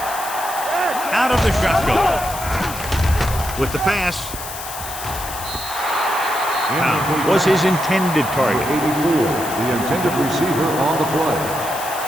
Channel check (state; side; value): noise; left; hiss, 10 dB below the sound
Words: Out of the shotgun. With the pass. Pound was his intended target. 84, the intended receiver on the play.